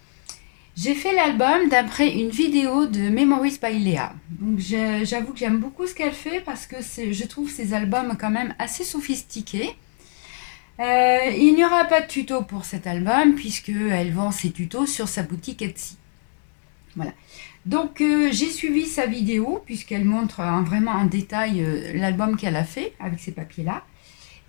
J'ai fait l'album d'après une vidéo de Memories by Léa. Donc j'avoue que j'aime beaucoup ce qu'elle fait parce que je trouve ces albums quand même assez sophistiqués. Il n'y aura pas de tuto pour cet album puisqu'elle vend ses tutos sur sa boutique Etsy. Voilà. Donc j'ai suivi sa vidéo puisqu'elle montre vraiment en détail l'album qu'elle a fait avec ces papiers là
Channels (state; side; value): silent; right; digital silence